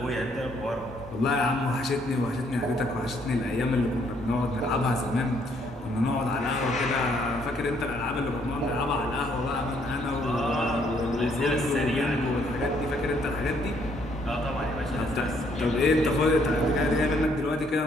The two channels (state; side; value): normal; both; correlation 0.68